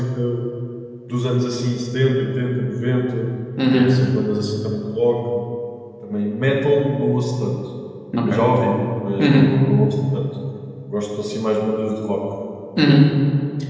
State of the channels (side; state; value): both; identical; correlation 1.00